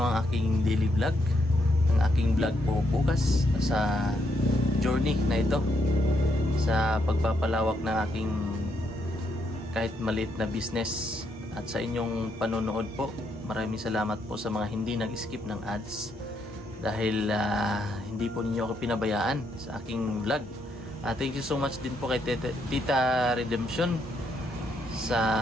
ang aking daily vlog, ang aking vlog po bukas sa journey na ito, sa pagpapalawak ng aking kahit maliit na business. At sa inyong panonood po, maraming salamat po sa mga hindi nag-skip ng ads, dahil hindi po ninyo ako pinabayaan sa aking vlog. Thank you so much din po kay Tita Redemption sa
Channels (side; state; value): both; normal; correlation 0.76